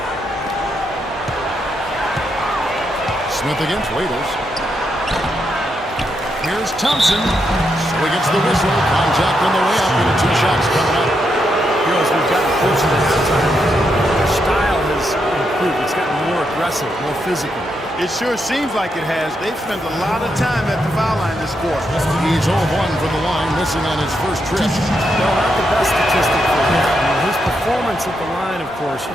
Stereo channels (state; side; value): normal; both; correlation 0.81